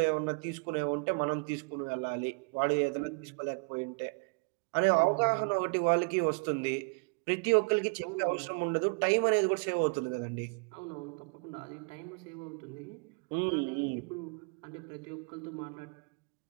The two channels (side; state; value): left; quieter; 34.3 dB